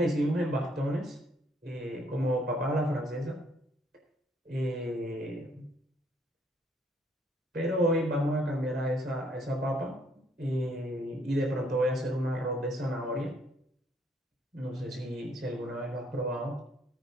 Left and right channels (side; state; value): both; normal; correlation 0.67